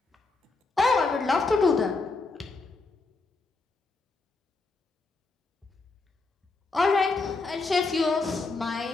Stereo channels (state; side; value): quieter; right; 3.7 dB